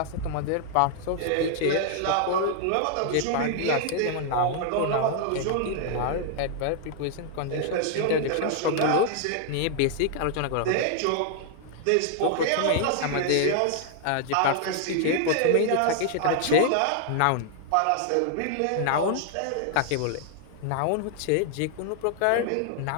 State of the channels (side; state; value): both; different; correlation -0.01